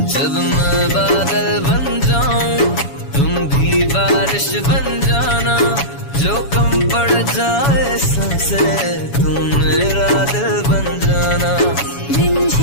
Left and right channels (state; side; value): late; right; 7.1 ms